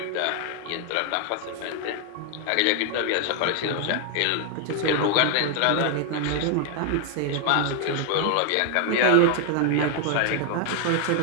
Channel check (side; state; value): both; different; correlation 0.00